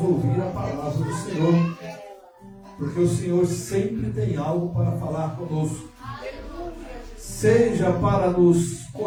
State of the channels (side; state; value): both; identical; correlation 1.00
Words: ouvir a palavra do Senhor. Porque o Senhor sempre tem algo para falar conosco. Seja para nos